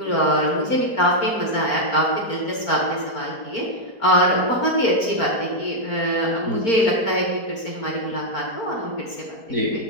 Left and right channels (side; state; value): right; late; 4.4 ms